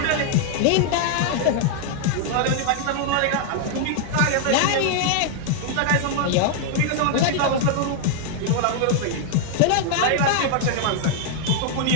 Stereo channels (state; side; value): different; both; correlation 0.00